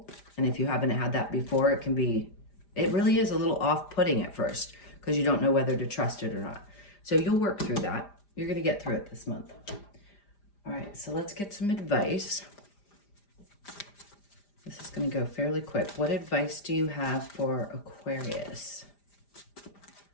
And if you haven't had that before, it can be It really is a little off-putting at first because you don't know whether to trust it or not. So you'll work through that. You're going to get through it this month. All right, so let's get some advice. This is going to go fairly quick. What advice do you have for Aquarius?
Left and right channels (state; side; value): late; right; 5.0 ms